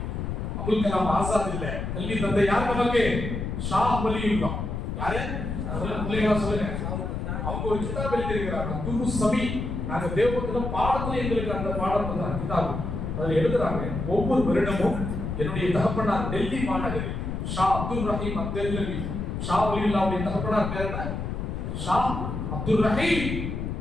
அபுல் கலாம் ஆசாத் இல்ல, கல்வி தந்தை யார் நமக்கு? ஷா வலியுல்லாஹ். யாரு? சொல்லுங்க. அவங்க ஒரு கிதாப் எழுதியிருக்கிறாங்க, துரு சபி. நாங்க தேவபுரத்துல பாடத்துல எங்களுக்கு அந்த பாடம் தான் கிதாப். அதுல எழுதுறாங்க, ஒவ்வொரு வருடமும் என்னுடைய தகப்பனார் டெல்லி மாநகரில் ஷா அப்துல் ரஹீம் அப்துல்லவி, ஷா வலியுல்லாஹ்வுடைய தகப்பனார் பேர் என்ன? ஷா அப்துல் ரஹீம்.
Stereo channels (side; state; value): left; noise; rumble, 4 dB below the sound